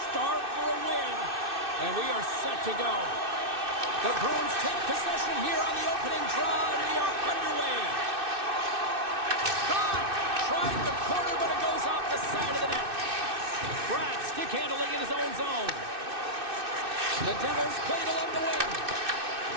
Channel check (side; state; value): left; late; 2.6 ms